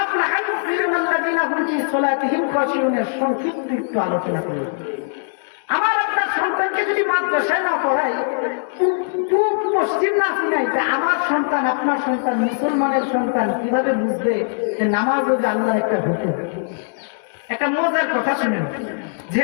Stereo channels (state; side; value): silent; right; digital silence